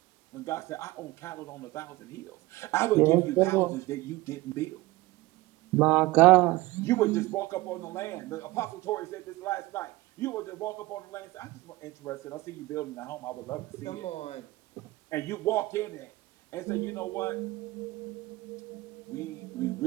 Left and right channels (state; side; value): quieter; left; 19.5 dB